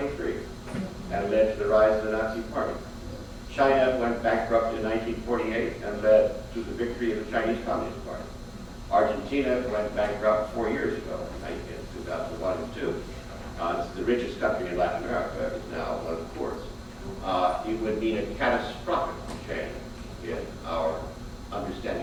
and led to the rise of the Nazi Party. China went bankrupt in 1948 and led to the victory of the Chinese Communist Party. Argentina went bankrupt 4 years ago, in 2001 and 2. It's the richest country in Latin America. It's now one of the poorest. It would mean a catastrophic change in our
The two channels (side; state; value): both; identical; correlation 1.00